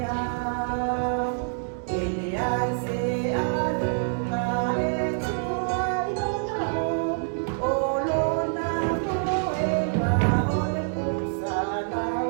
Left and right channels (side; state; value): left; silent; digital silence